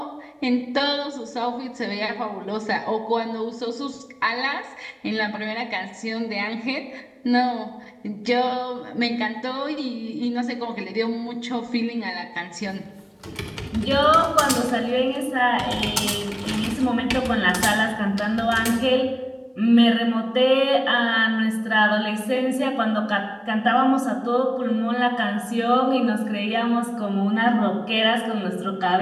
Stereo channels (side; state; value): both; identical; correlation 1.00